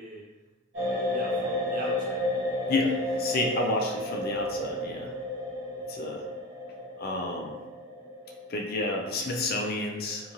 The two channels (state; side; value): normal; both; correlation 0.27